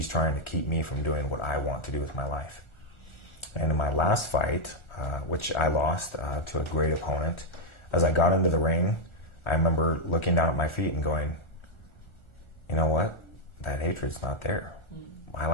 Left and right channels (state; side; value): late; right; 1.4 ms